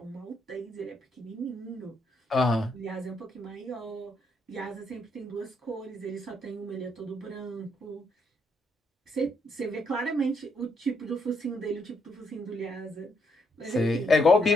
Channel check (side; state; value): both; normal; correlation 0.75